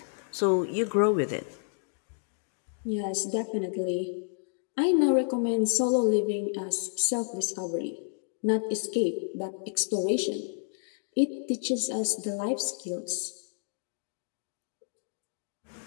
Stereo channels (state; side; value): silent; right; digital silence